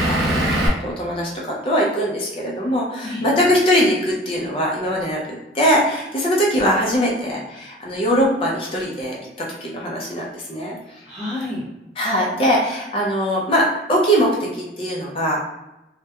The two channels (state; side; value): normal; both; correlation 0.37